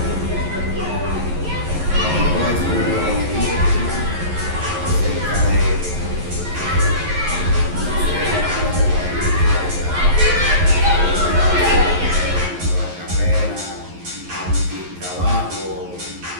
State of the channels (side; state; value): left; late; 11 ms